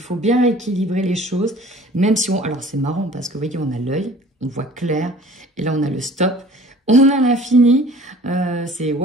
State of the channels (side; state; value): both; normal; correlation 0.48